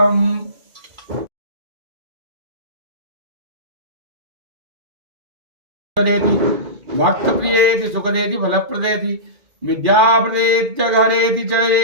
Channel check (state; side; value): late; left; 2.4 ms